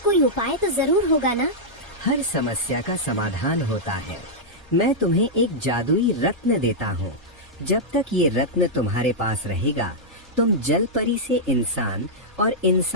कोई उपाय तो जरूर होगा ना? हर समस्या का समाधान होता है। मैं तुम्हें एक जादुई रत्न देता हूँ। जब तक ये रत्न तुम्हारे पास रहेगा, तुम जलपरी से इंसान और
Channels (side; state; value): both; normal; correlation -0.07